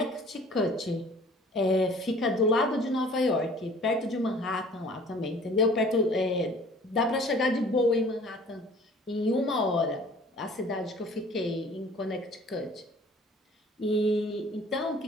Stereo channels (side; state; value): both; normal; correlation 0.50